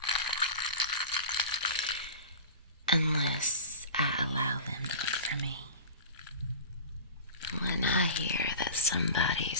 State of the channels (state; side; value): inverted; both; correlation -0.34